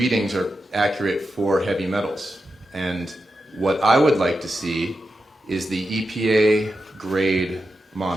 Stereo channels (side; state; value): both; normal; correlation 0.89